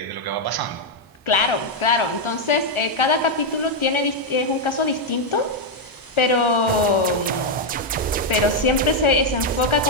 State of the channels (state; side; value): normal; both; correlation 0.00